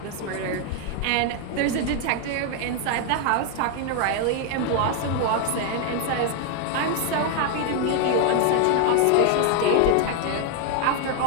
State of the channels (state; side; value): different; both; correlation 0.00